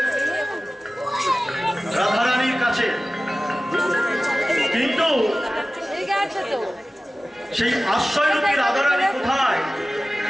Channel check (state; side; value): normal; both; correlation 0.96